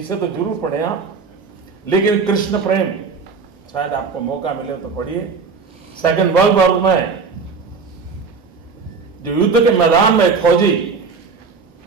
तो जरूर पढ़े आप, लेकिन कृष्ण प्रेम शायद आपको मौका मिले तो पढ़िए। सेकेंड वर्ल्ड वॉर में जो युद्ध के मैदान में फौजी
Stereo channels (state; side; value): quieter; left; 5.0 dB